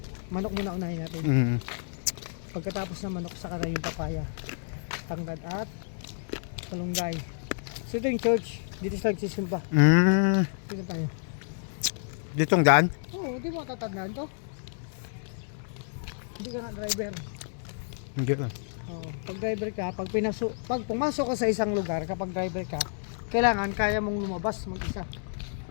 manok muna unahin natin. Mm. Pagkatapos ng manok, saka na yung papaya, tanglad at malunggay. So ito yung church. Dito sa nagsisimba. Mm. Dito tayo. Ditong daan? Oo, di mo tatandaan to. Hindi ka nga driver. Hindi. Oo, pag driver ka, pag pumasok ka sa isang lugar, kapag driver ka, kailangan kaya mong lumabas mag-isa.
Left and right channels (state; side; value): silent; right; digital silence